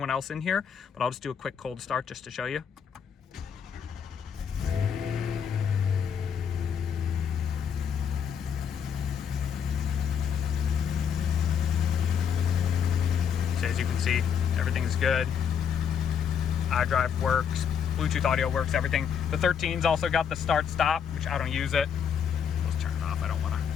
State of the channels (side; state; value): right; quieter; 7.6 dB